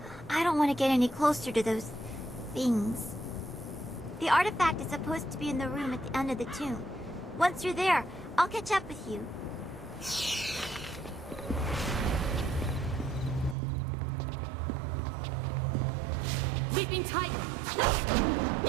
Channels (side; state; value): left; drops out; at 13.6 s